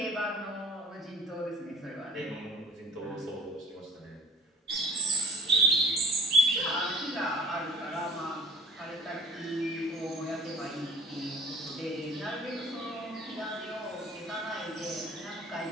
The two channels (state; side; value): normal; both; correlation 0.46